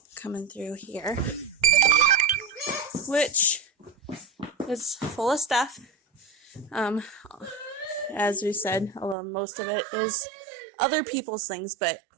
coming through here, which is full of stuff. As we said, most of it is other people's things,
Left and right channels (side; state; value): left; drops out; at 9.2 s